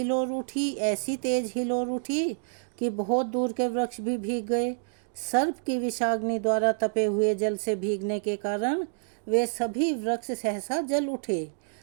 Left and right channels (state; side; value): silent; left; digital silence